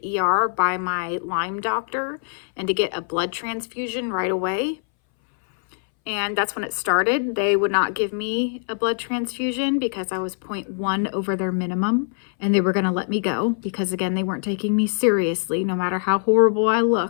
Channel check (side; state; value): right; silent; 61 dB below the other